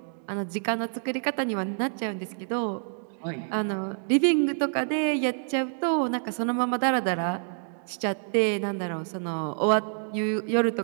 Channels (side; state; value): left; silent; digital silence